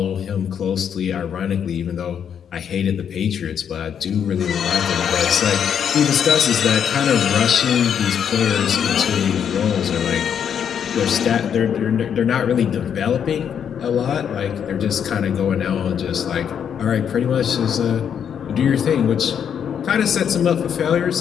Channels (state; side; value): quieter; right; 8.2 dB